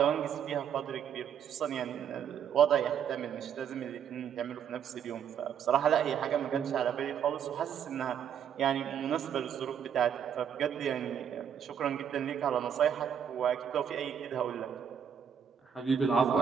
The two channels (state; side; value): quieter; left; 8.3 dB